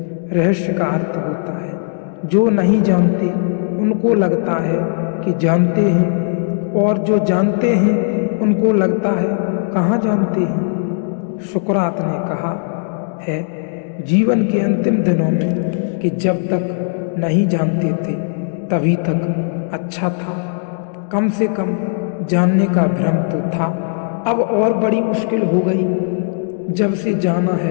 रहस्य का अर्थ होता है जो नहीं जानते उनको लगता है कि जानते हैं, और जो जानते हैं उनको लगता है कहाँ जानते हैं। सुकरात ने कहा है जीवन के अंतिम दिनों में कि जब तक नहीं जानते थे तभी तक अच्छा था, कम से कम जानने का भ्रम तो था। अब और बड़ी मुश्किल हो गई, जब से जाना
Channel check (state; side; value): silent; right; digital silence